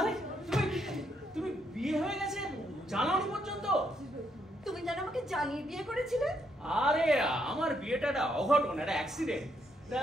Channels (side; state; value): both; normal; correlation 0.75